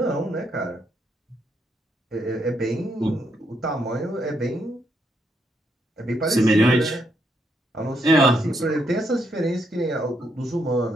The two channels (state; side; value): normal; both; correlation 0.76